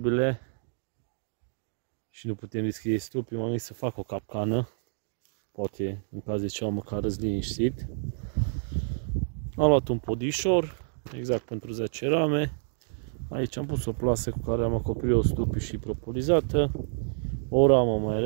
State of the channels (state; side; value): silent; left; digital silence